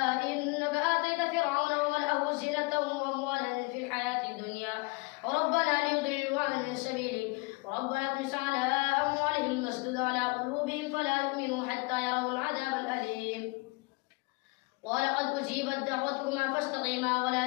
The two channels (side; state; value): right; quieter; 27.0 dB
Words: إنك آتيت فرعون وملأه زينة وأموالا في الحياة الدنيا وربنا ليضلوا عن سبيلك وربنا اطمس على أموالهم واسدد على قلوبهم فلا يؤمنوا حتى يروا العذاب الأليم قال قد أجيبت دعوتكما فاستقيما